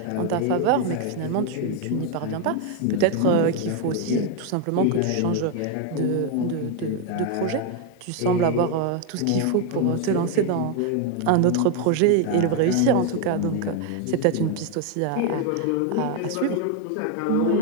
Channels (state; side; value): different; both; correlation 0.01